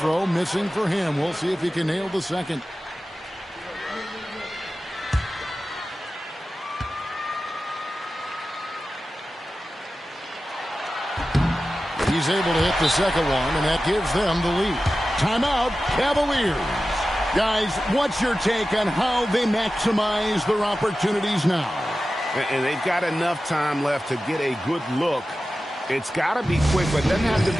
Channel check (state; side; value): normal; both; correlation 0.94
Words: missing for him. We'll see if he can nail the second. He's able to hit the second one, and that gives them the lead. Timeout, Cavaliers. Guys, what's your take on how they maximize their opportunities now? And they've got enough time left to get a good look. It's got to be quick, but it doesn't have to